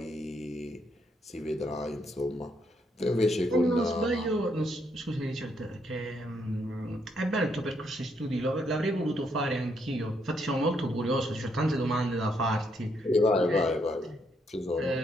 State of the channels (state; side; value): normal; both; correlation 0.75